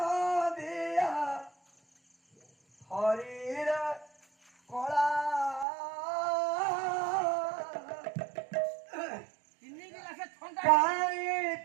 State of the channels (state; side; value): drops out; left; at 5.7 s